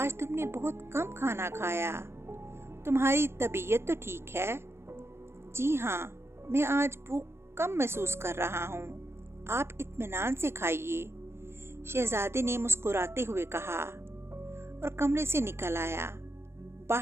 तुमने बहुत कम खाना खाया। तुम्हारी तबीयत तो ठीक है? जी हाँ, मैं आज भूख कम महसूस कर रहा हूँ। आप इत्मीनान से खाइए, शहजादे ने मुस्कुराते हुए कहा और कमरे से निकल आया।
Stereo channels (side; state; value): left; late; 0.12 ms